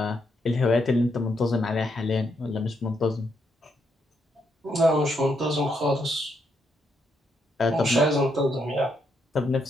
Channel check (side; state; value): both; normal; correlation 0.78